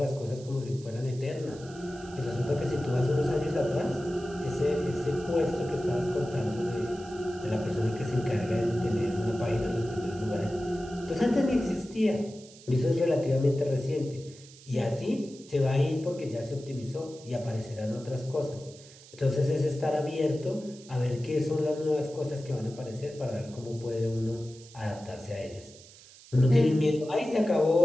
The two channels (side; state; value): right; noise; hiss, 21 dB below the sound